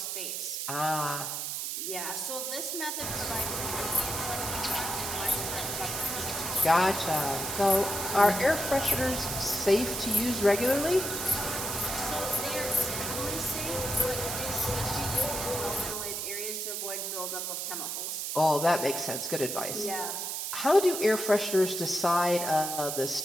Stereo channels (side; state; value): right; noise; hiss, 3 dB below the sound